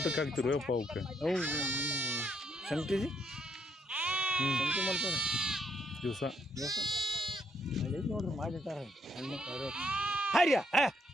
ಹಾಕ್ತಿರು ಅಪ್ಪ ಅವಕ್ಕೆ? ಅವು ಸಂಗತಿ ಸಂಗತಿ ಮಾಡ್ತಾರೆ ದಿವಸ ಅಲ್ಲಿ ನೋಡ್ರಿ ಮಾಡಿರ್ತಾರೆ. ಹಣ್ಣು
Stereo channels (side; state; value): both; normal; correlation 0.73